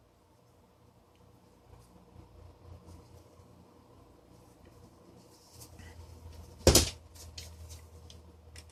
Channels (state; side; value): identical; both; correlation 1.00